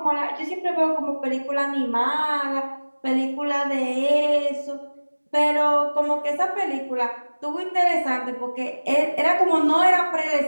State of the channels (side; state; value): both; inverted; correlation -1.00